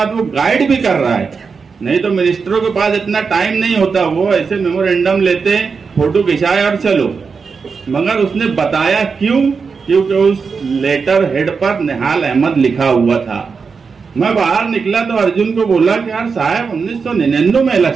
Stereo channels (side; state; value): left; quieter; 5.3 dB